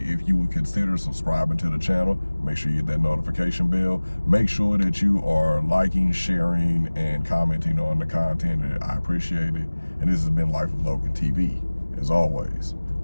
if you would consider subscribing to the channel. Make sure you hit that notification bell. Make sure that you are liking, sharing, and commenting on the content. I appreciate it. And this has been Life of Logan TV. As always,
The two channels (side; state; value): both; inverted; correlation -1.00